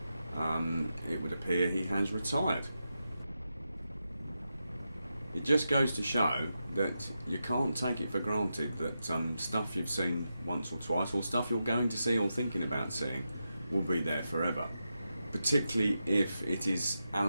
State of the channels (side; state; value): both; inverted; correlation -0.88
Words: It would appear he has retired. It just goes to show that you can't take it for granted that stuff you've seen once or twice, or stuff you're going to see or thinking about seeing, will be there forever. Particularly if it is